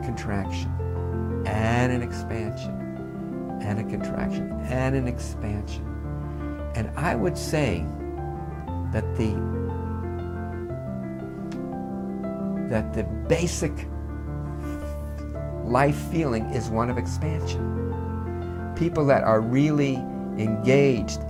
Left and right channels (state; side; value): identical; both; correlation 1.00